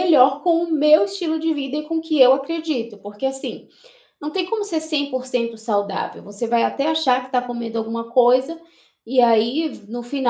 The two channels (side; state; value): both; identical; correlation 1.00